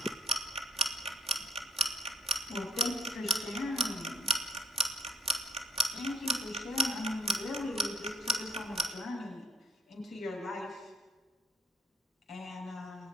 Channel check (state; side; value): normal; both; correlation 0.61